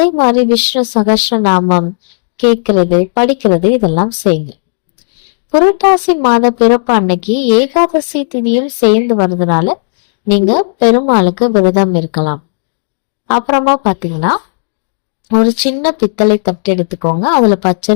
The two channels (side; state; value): right; silent; digital silence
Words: மாதிரி விஷ்ணு சகஸ்ர நாமம் கேட்கறது, படிக்கிறது இதெல்லாம் செய்யுங்க. புரட்டாசி மாத பிறப்பு அன்னைக்கு ஏகாதசி திதியும் சேர்ந்து வர்றதுனால நீங்க பெருமாளுக்கு விரதம் இருக்கலாம். அப்புறமா பாத்தீங்கன்னா ஒரு சின்ன பித்தளை தட்டு எடுத்துக்கோங்க. அதுல